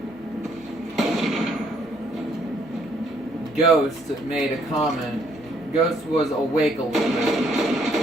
Ghost made a comment. Ghost was awake a little bit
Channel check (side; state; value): both; normal; correlation 0.67